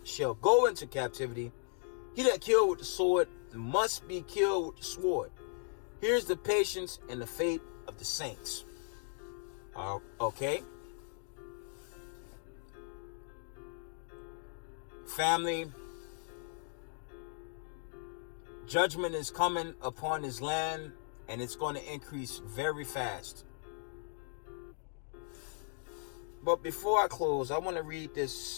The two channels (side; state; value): right; silent; 53 dB below the other